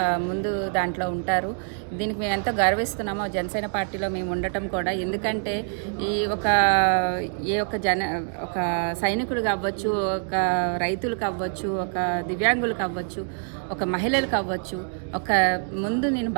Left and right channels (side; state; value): left; silent; 59 dB below the other